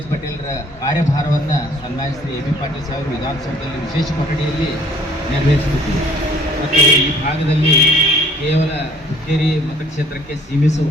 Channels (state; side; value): normal; both; correlation 0.57